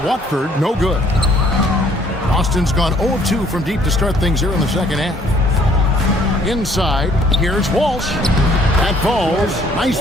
no good. Boston's gone 0 of 2 from deep to start things here in the second half. Inside, here's Walsh. That falls. Nice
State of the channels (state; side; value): normal; both; correlation 0.61